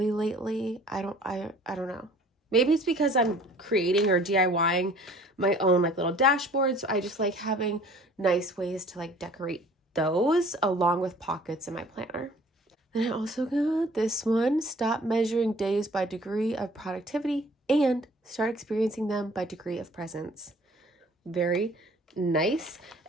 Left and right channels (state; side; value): normal; both; correlation 0.52